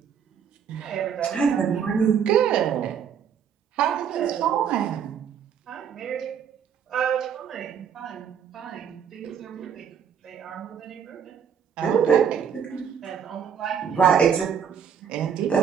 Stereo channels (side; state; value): left; quieter; 7.7 dB